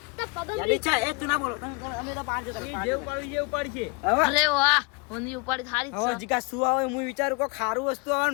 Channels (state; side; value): quieter; right; 29.3 dB